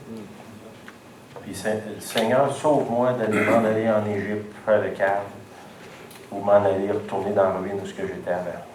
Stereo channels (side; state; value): both; identical; correlation 1.00